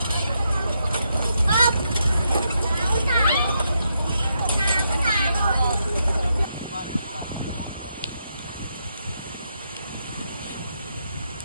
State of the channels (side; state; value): both; inverted; correlation -0.80